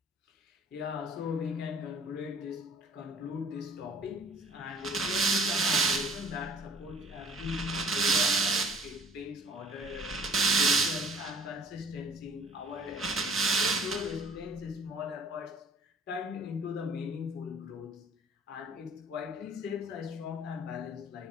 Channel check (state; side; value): normal; both; correlation 0.53